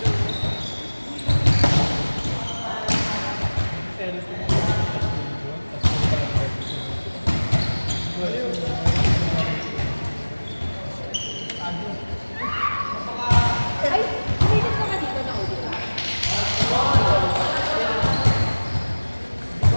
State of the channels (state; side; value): inverted; both; correlation -1.00